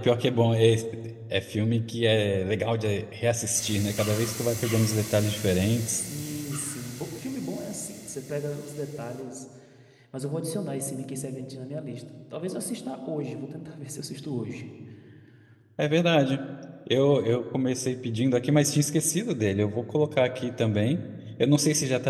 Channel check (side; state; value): both; identical; correlation 1.00